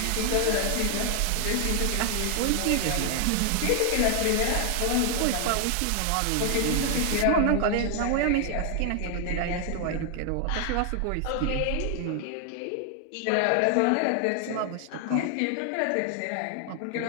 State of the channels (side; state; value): both; different; correlation 0.00